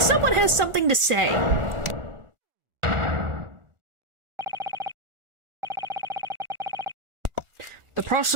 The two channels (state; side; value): late; left; 1.4 ms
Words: Someone has something to say. The